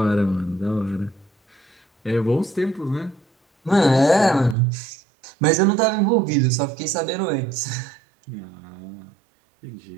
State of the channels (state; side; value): drops out; left; at 4.5 s